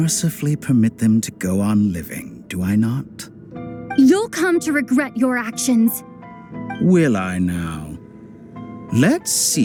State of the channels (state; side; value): identical; both; correlation 1.00